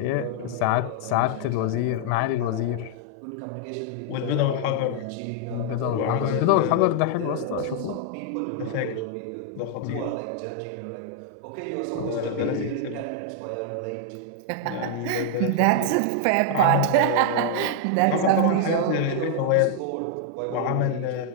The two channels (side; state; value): both; different; correlation -0.01